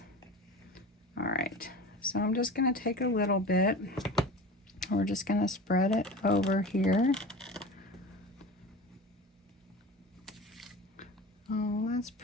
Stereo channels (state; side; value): normal; both; correlation 0.33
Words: All right, so I'm just going to take a little bit. We're just going to spread it over here. Oh, that's